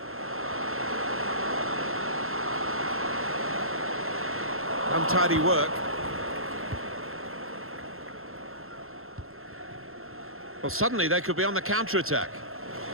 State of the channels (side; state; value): left; late; 0.62 ms